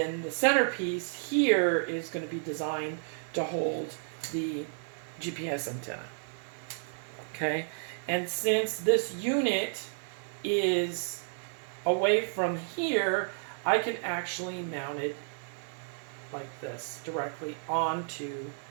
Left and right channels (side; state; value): left; silent; 57 dB below the other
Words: the centerpiece here is going to be designed to hold the GPS antenna. Okay, and since this unit is away from here, I can actually mount it like this directly onto